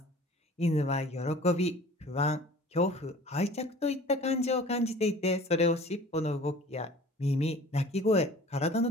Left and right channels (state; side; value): normal; both; correlation 0.46